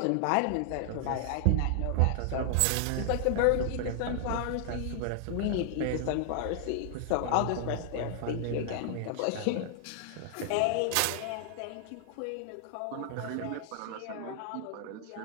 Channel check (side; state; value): both; different; correlation 0.00